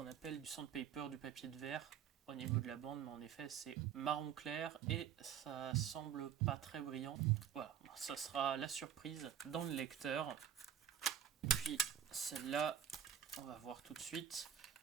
appelle du sandpaper, du papier de verre au niveau de la bande, mais en effet c'est marron clair et ça semble pas très brillant. Voilà, ça sera la surprise dans le lecteur. Puis celle-là, on va voir tout de suite.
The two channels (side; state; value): left; quieter; 9.0 dB